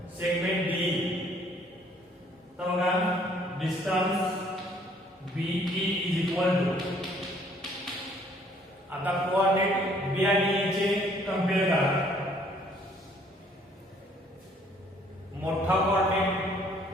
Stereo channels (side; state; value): both; normal; correlation 0.61